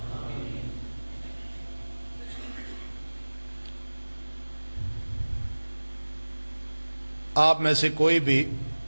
آپ میں سے کوئی بھی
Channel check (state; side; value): inverted; both; correlation -1.00